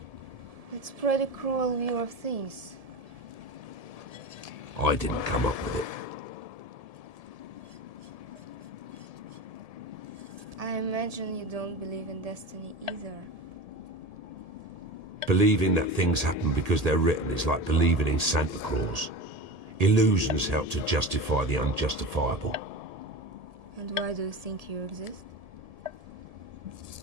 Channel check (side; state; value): left; late; 1.7 ms